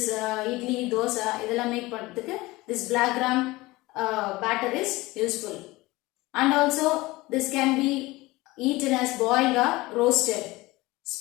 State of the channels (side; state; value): right; quieter; 20.6 dB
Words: idli, dosa இதெல்லாம் make பண்றதுக்கு this black gram batter is useful. And also this can be eaten as boiled or roasted.